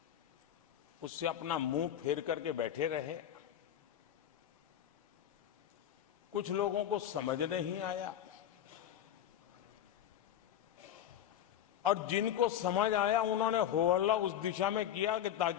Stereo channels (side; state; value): right; quieter; 10.6 dB